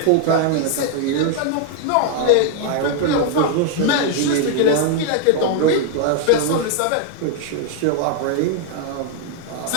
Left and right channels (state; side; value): different; both; correlation 0.00